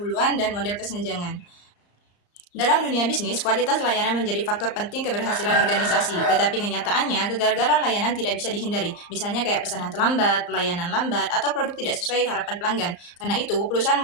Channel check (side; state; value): right; late; 34 ms